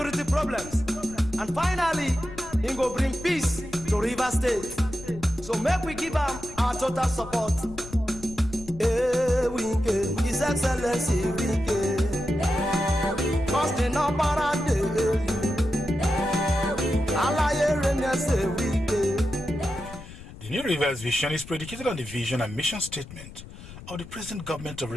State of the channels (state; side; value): noise; left; rumble, 15 dB below the sound